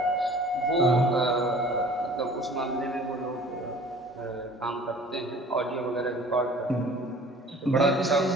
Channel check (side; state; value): both; normal; correlation 0.48